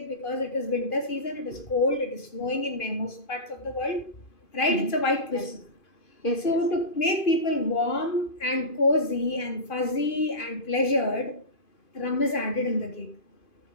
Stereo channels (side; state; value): right; late; 2.5 ms